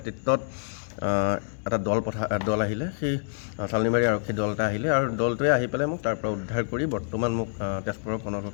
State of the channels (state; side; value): silent; right; digital silence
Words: এটা দল আহিলে, সেই চালনিবাৰী আৰক্ষী দল এটা আহিলে, আৰু দলটোৱে আহি পেলাই মোক তাৰ পৰা উদ্ধাৰ কৰি বৰ্তমান মোক তেজপুৰৰ